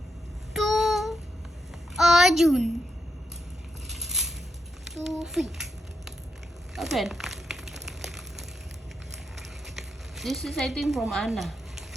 To Arjun. To feet. Open. This is, I think, from Anna.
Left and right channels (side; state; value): both; normal; correlation 0.83